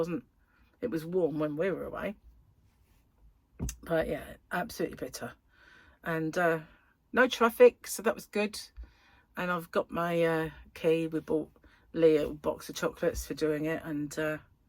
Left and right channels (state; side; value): identical; both; correlation 1.00